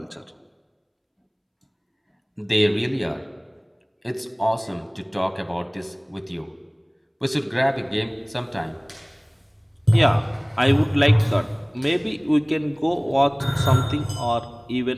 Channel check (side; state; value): both; identical; correlation 1.00